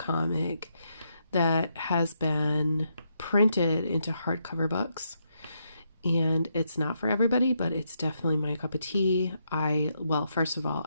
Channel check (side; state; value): both; inverted; correlation -0.79